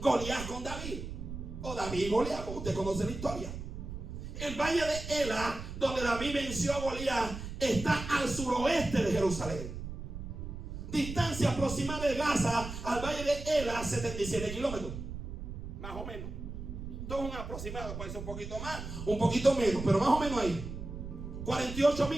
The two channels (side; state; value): right; noise; rumble, 8 dB below the sound